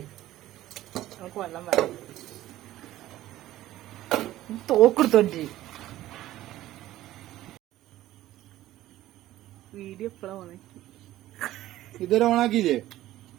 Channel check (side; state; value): left; quieter; 14.8 dB